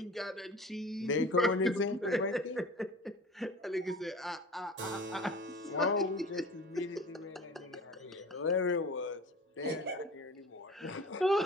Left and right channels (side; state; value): both; normal; correlation 0.40